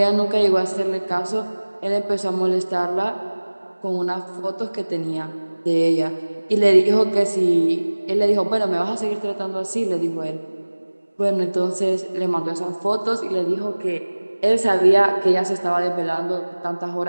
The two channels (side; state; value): both; inverted; correlation -1.00